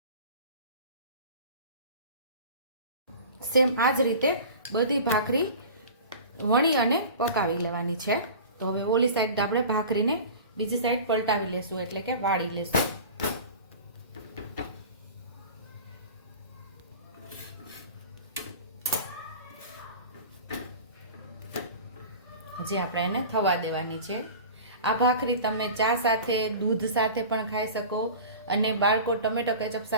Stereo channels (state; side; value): inverted; both; correlation -0.37